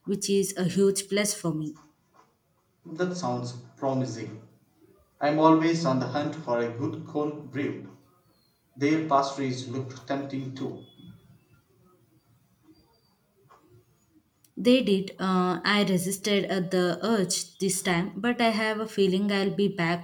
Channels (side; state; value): both; identical; correlation 1.00